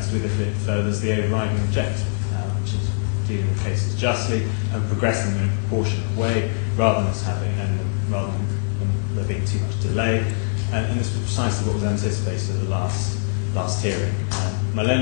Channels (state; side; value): silent; right; digital silence